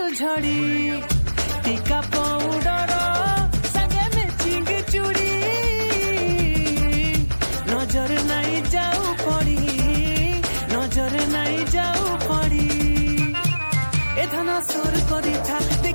झड़ी टीका पाउडर संगे मैचिंग चूड़ी नजर नहीं जाऊ पड़ी नजर नहीं जाऊ पड़ी ए धना सोर करी था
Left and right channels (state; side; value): inverted; both; correlation -1.00